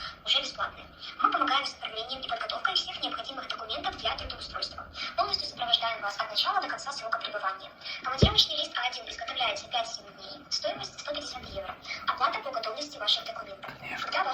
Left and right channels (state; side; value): identical; both; correlation 1.00